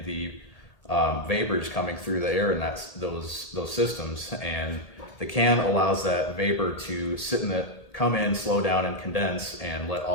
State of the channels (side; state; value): right; late; 1.8 ms